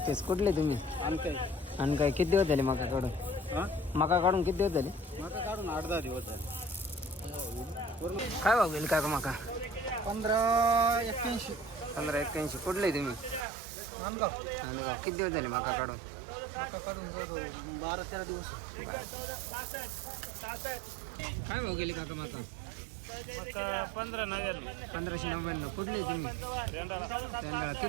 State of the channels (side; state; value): left; drops out; at 13.5 s